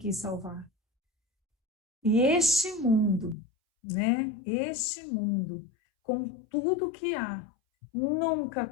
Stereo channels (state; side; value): drops out; right; at 3.4 s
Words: salvar. E este mundo, né? Este mundo, com tudo que há, nunca